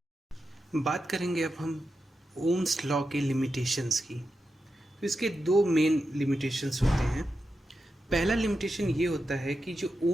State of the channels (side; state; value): both; normal; correlation 0.89